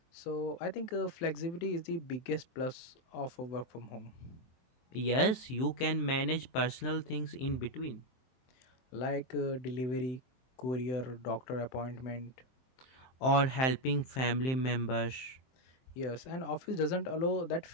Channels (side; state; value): right; late; 23 ms